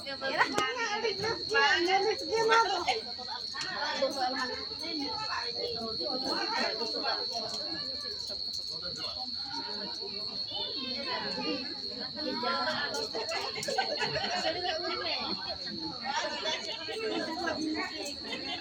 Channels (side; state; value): right; noise; hum, 30 dB below the sound